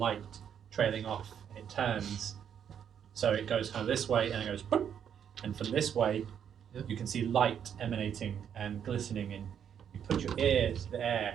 trailing off, and it turns. So it goes kind of this way, and it goes, boop, and from this way, you can see light emanating and glistening, and you put your ear to the air,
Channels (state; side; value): quieter; left; 8.6 dB